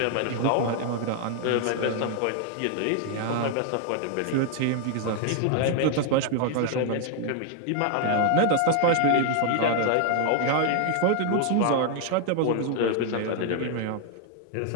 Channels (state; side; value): different; both; correlation 0.00